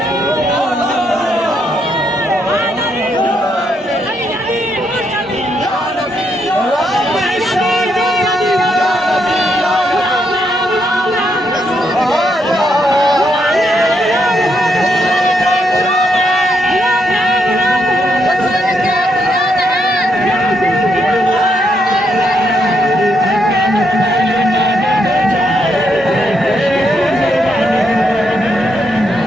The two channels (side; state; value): both; normal; correlation 0.77